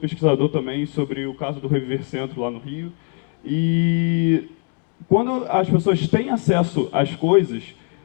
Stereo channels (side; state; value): right; quieter; 38.4 dB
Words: também sobre o caso do Reviver Centro lá no Rio. E quando as pessoas têm acesso às coisas,